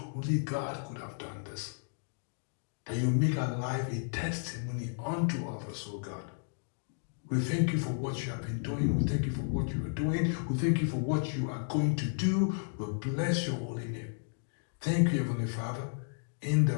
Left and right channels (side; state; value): right; silent; digital silence